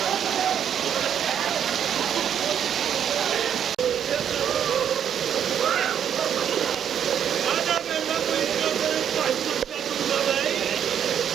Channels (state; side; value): quieter; left; 8.9 dB